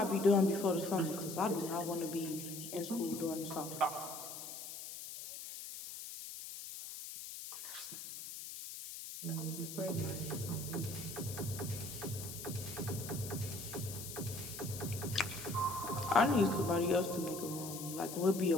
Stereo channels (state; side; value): noise; left; hiss, 9 dB below the sound